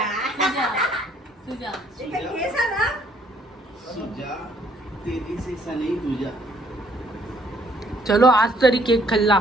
सुजा तेरी से सनी तुझा. चलो आज तरी केक खाल्ला.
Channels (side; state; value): both; normal; correlation 0.65